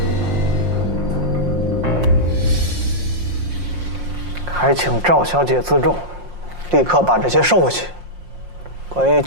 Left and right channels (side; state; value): left; late; 5.6 ms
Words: 还请赵小姐自重，立刻把这些收回去。关于